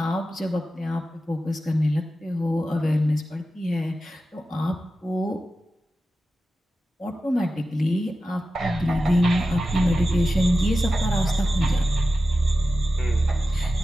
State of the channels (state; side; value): normal; both; correlation 0.93